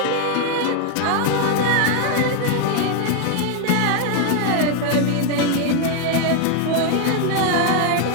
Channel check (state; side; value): different; both; correlation 0.01